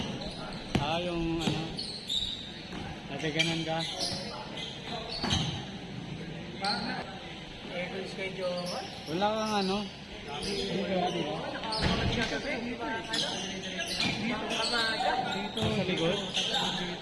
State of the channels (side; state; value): both; identical; correlation 1.00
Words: Ah, yung ano? Natiganan ka? Full schedule. Wala kang ano? Dito. Sa likod?